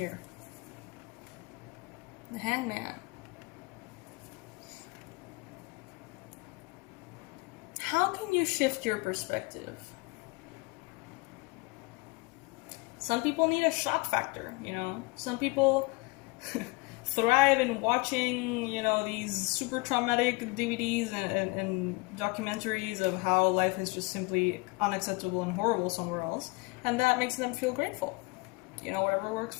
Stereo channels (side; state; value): right; quieter; 26.0 dB